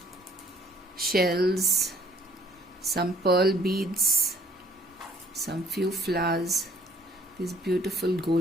shells, some pearl beads, some few flowers. These beautiful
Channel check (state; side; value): normal; both; correlation 0.61